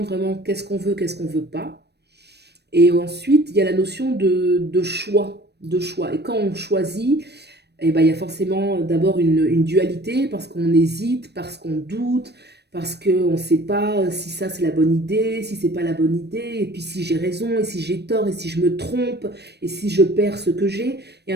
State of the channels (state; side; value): late; left; 0.48 ms